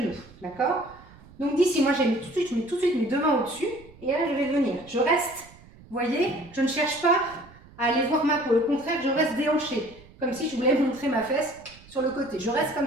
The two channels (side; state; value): right; noise; rumble, 23 dB below the sound